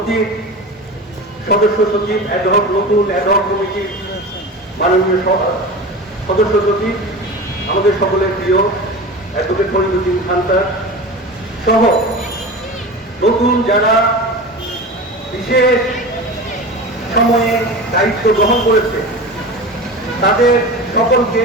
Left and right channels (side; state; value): both; normal; correlation 0.30